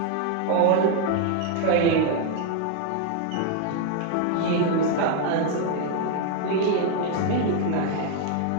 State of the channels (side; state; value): both; different; correlation 0.00